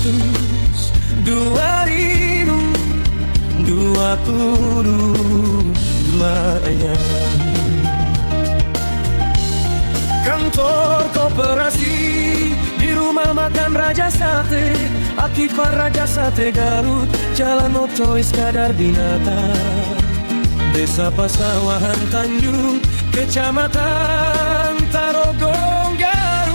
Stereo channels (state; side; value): inverted; both; correlation -1.00